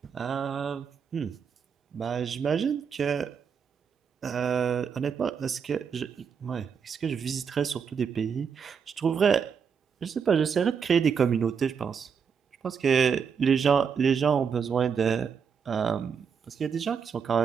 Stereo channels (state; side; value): quieter; left; 6.6 dB